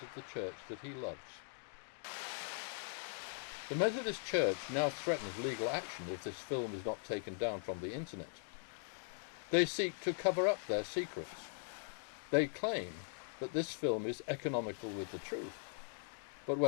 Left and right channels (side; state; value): right; silent; digital silence